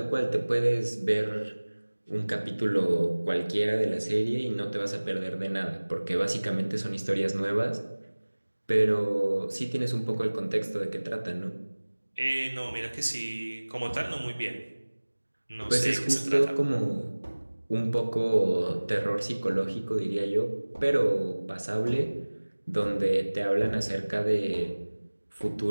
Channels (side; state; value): both; inverted; correlation -1.00